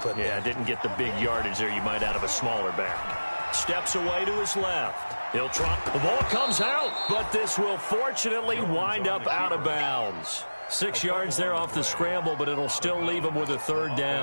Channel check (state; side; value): inverted; both; correlation -1.00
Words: put there. Yeah, didn't get the big yardage there you might out of a smaller back. Steps away to his left. He'll try. The ball comes out, but this will fortunately wind up out of bounds. 6 yards there off the scramble, but it'll still leave him with a third